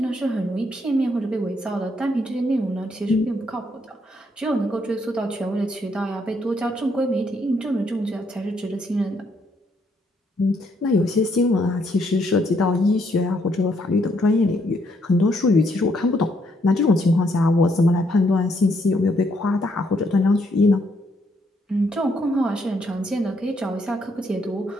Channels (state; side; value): normal; both; correlation 0.72